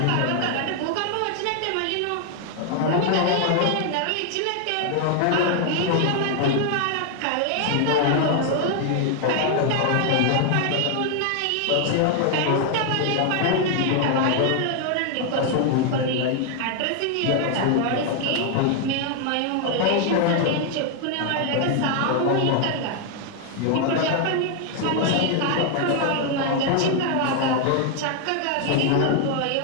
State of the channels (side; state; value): both; different; correlation 0.00